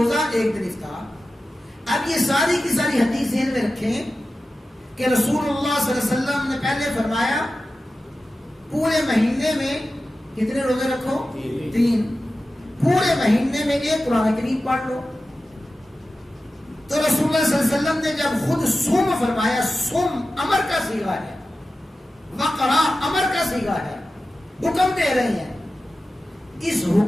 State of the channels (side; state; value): both; normal; correlation 0.94